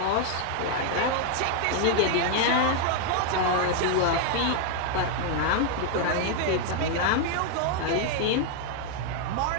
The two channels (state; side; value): different; both; correlation 0.00